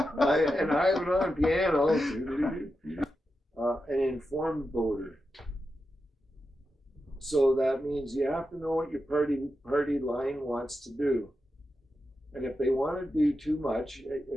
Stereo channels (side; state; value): both; normal; correlation 0.89